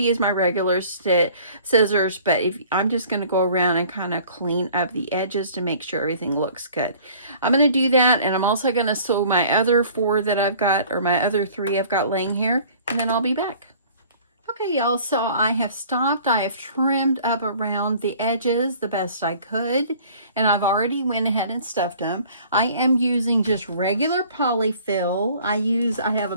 use my regular scissors, but I'm just going to go around and kind of clean up the edges to make sure everything looks good. I'm going to do that, and I'm also going to sew my other 4 that I've got, or my other 3 I've got laying here, and then I'll be back. Okay, y'all, so I have stopped. I have trimmed up around the edges the best I could, and I've already went ahead and stuffed them. I am using just regular polyfill. I have a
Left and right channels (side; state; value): both; inverted; correlation -0.51